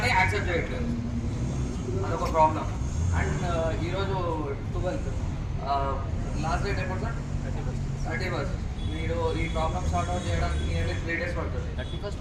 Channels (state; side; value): identical; both; correlation 1.00